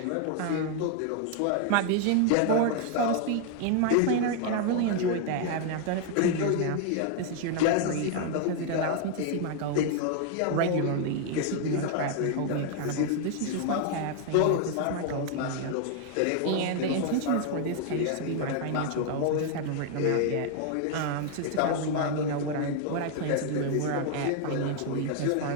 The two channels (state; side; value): different; both; correlation 0.00